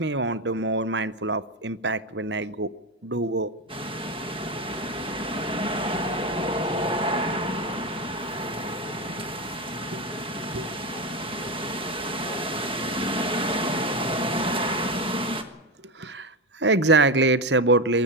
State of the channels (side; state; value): both; normal; correlation 0.14